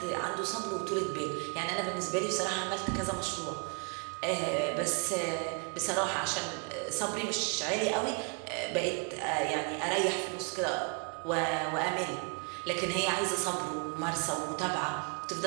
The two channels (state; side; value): quieter; left; 36.1 dB